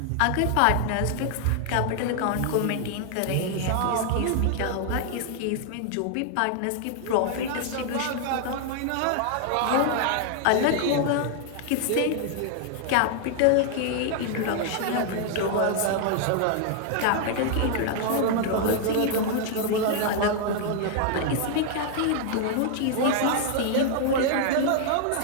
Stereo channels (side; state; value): both; different; correlation 0.00